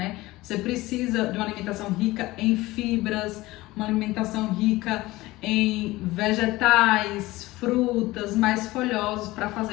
Você precisa de uma alimentação rica em fibras, uma alimentação rica em vegetais, frutas, mais folhosos, para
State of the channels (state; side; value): quieter; right; 19.1 dB